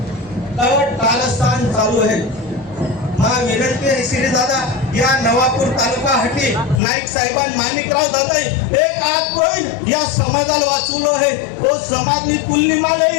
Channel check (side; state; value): right; drops out; at 6.8 s